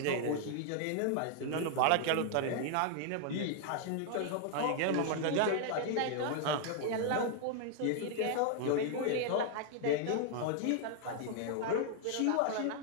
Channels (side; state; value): both; different; correlation 0.00